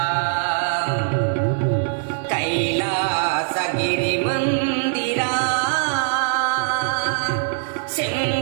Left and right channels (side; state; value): left; silent; digital silence